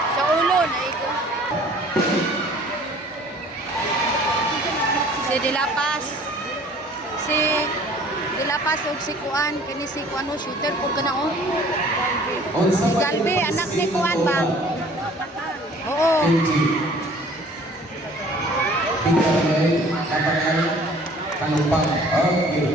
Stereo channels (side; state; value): both; normal; correlation 0.52